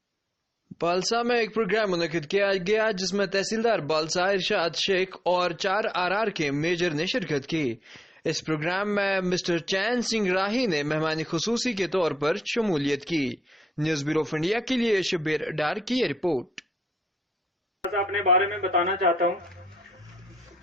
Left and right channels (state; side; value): normal; both; correlation 0.83